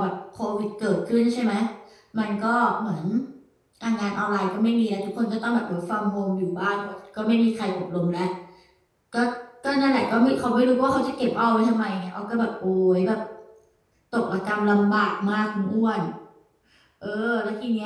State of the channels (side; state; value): both; identical; correlation 1.00